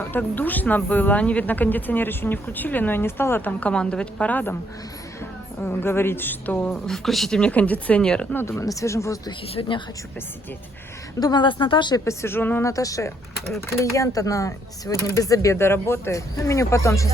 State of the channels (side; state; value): both; normal; correlation 0.70